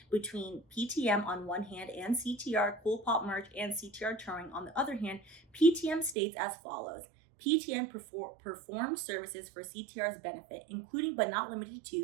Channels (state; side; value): drops out; left; at 6.2 s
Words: between PTM on one hand and CTR, Cool Pop Merch, and CTR Touring on the other hand, PTM states as follows. PTM performs services for CTR's benefit, including but not limited